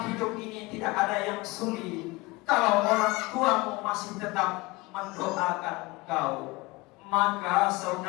hidup ini tidak ada yang sulit kalau orang tuamu masih tetap mendoakan kau. Maka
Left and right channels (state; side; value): quieter; right; 22.9 dB